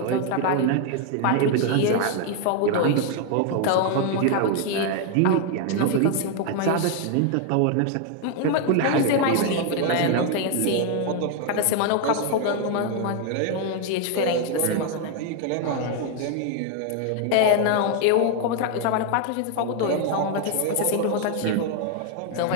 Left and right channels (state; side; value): different; both; correlation 0.00